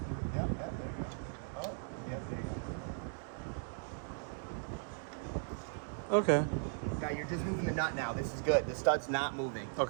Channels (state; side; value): silent; left; 53 dB below the other